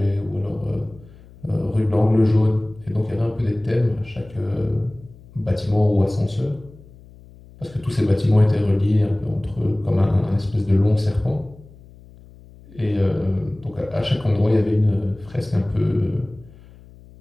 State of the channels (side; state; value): left; noise; hum, 22 dB below the sound